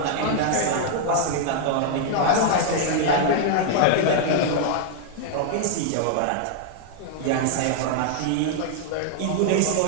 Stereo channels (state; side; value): different; both; correlation -0.01